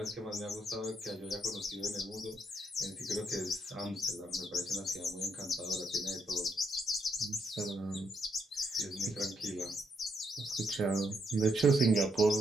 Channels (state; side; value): normal; both; correlation 0.76